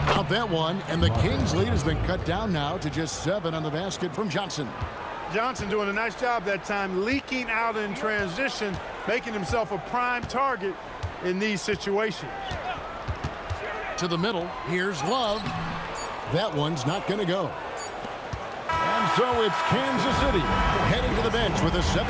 Out that one, and the Kings' lead has been cut down now to just 7 on the basket from Johnson. Johnson doing a nice job that time, leaking out in transition, making himself a prime target in these situations. To the middle, here's Love. That one's not going to go. And so it's Kansas City heading to the bench with a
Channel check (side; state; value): both; identical; correlation 1.00